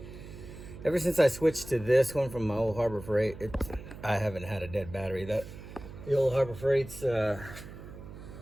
Ever since I switched to this one from my old Harbor Freight, I haven't had a dead battery. The old Harbor Freight's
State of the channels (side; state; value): right; noise; hum, 14 dB below the sound